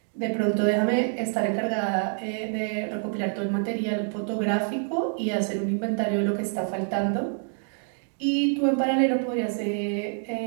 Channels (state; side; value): silent; left; 55 dB below the other